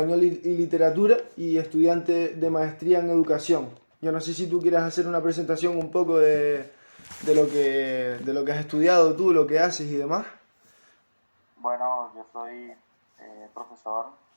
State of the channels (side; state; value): both; inverted; correlation -1.00